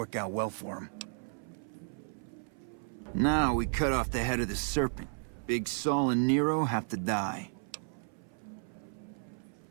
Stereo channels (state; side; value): silent; left; 55 dB below the other